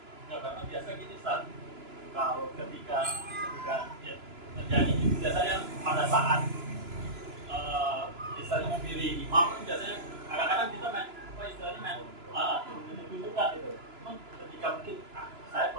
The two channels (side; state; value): left; late; 3.0 ms